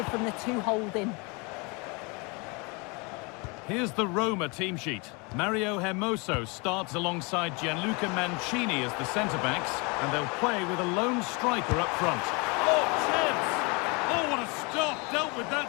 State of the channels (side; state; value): right; quieter; 29.8 dB